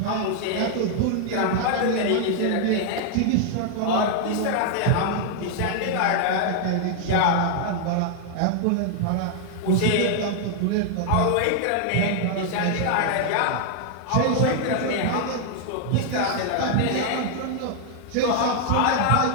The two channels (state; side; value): different; both; correlation 0.00